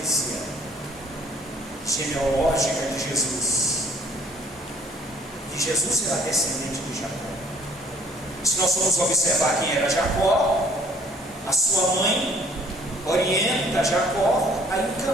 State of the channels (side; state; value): both; normal; correlation 0.58